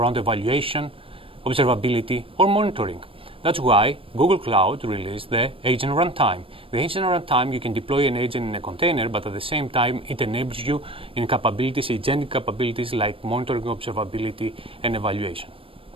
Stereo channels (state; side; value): late; left; 0.26 ms